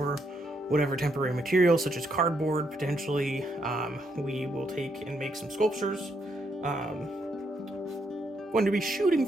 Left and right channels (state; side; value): normal; both; correlation 0.76